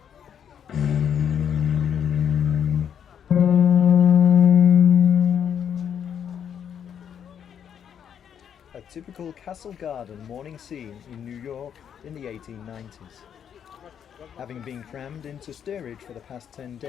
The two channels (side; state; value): right; quieter; 8.5 dB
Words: A typical castle garden morning scene in New York in the 1890s. Having been crammed into steerage for the past 10